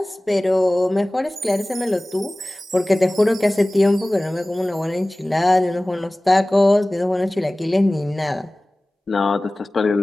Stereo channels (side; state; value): both; normal; correlation 0.98